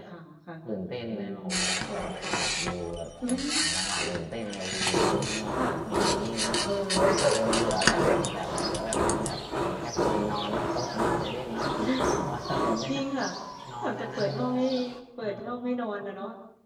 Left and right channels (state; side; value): identical; both; correlation 1.00